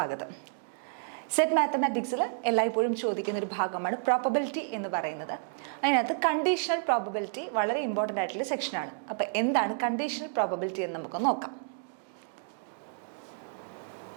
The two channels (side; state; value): left; silent; digital silence